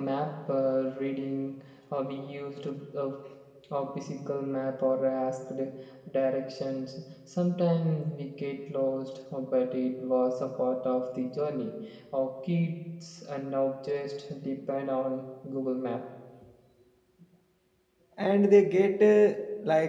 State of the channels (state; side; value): identical; both; correlation 1.00